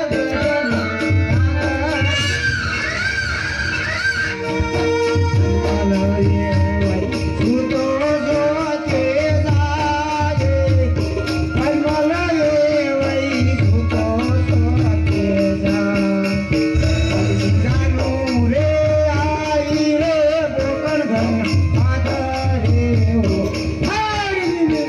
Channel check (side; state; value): both; identical; correlation 1.00